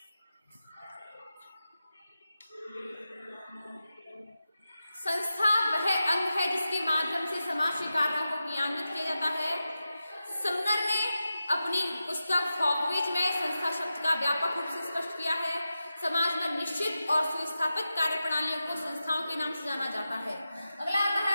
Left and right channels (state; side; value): inverted; both; correlation -0.92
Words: संस्था वह अंग है जिसके माध्यम से समाज के कार्यों को क्रियान्वित किया जाता है। समनर ने अपनी पुस्तक फॉकवेज में संस्था शब्द का व्यापक रूप से स्पष्ट किया है। समाज में निश्चित और सुस्थापित कार्य प्रणालियों को संस्थाओं के नाम से जाना जाता है। अगला आता